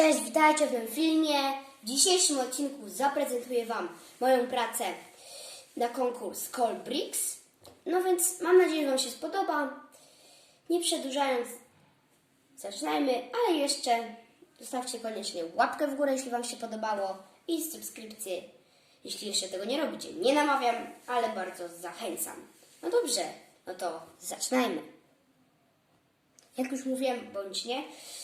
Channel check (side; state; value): both; identical; correlation 1.00